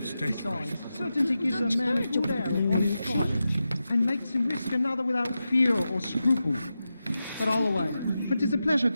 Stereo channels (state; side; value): inverted; both; correlation -0.91